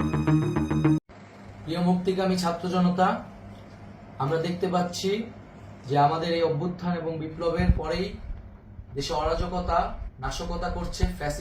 মুক্তিকামী ছাত্র জনতা, আমরা দেখতে পাচ্ছি যে আমাদের এই অভ্যুত্থান এবং বিপ্লবের পরেই দেশে অরাজকতা নাশকতা করছে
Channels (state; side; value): identical; both; correlation 1.00